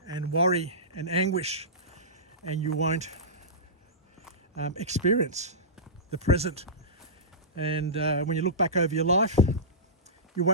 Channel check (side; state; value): both; normal; correlation -0.19